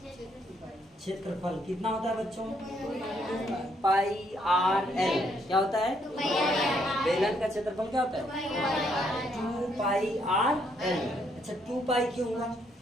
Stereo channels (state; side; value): normal; both; correlation 0.72